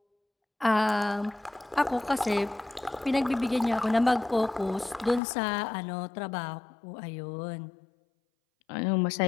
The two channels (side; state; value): right; drops out; at 5.2 s